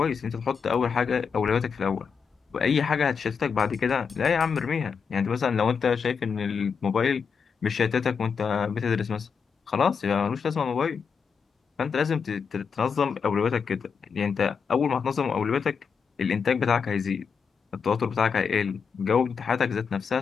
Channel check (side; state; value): right; quieter; 6.0 dB